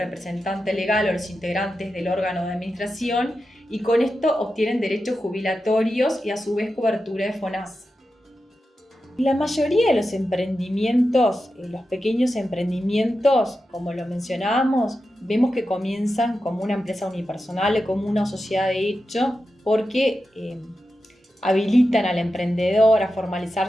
legal o los integrantes del órgano de administración, y con esto obtienen derechos jubilatorios y a su vez cobertura de FONASA. La mayoría de los emprendimientos, los pequeños emprendimientos, como lo mencionábamos, vemos que comienzan como una empresa unipersonal o como una sociedad de hecho, porque habilitan al emprendedor a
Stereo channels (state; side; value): normal; both; correlation 0.91